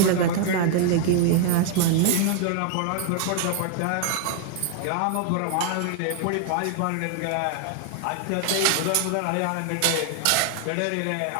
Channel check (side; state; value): both; different; correlation 0.00